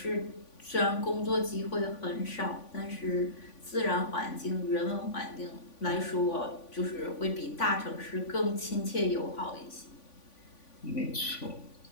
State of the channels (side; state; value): right; late; 3.5 ms